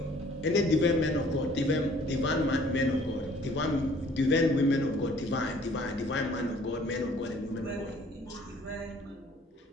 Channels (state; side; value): normal; both; correlation 0.56